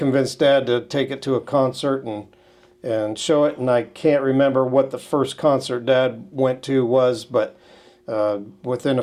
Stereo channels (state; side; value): identical; both; correlation 1.00